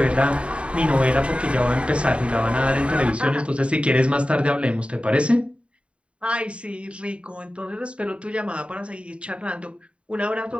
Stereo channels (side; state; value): left; late; 0.059 ms